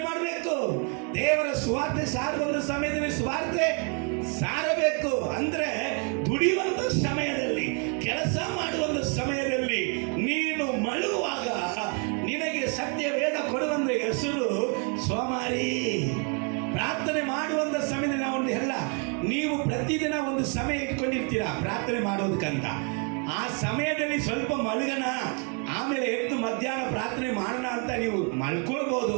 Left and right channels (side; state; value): left; quieter; 37.9 dB